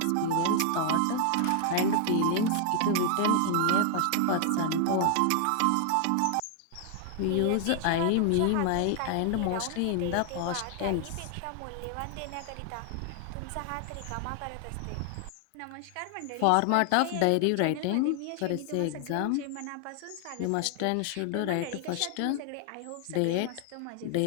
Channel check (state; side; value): different; both; correlation 0.00